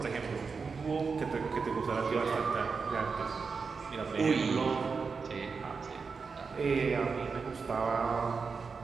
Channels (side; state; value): left; quieter; 5.0 dB